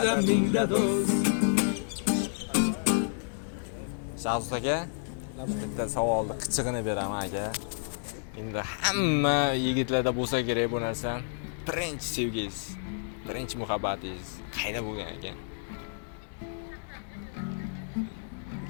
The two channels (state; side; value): silent; right; digital silence